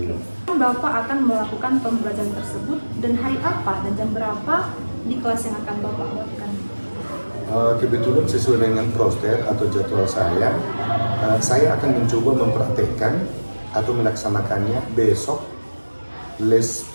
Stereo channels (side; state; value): both; inverted; correlation -1.00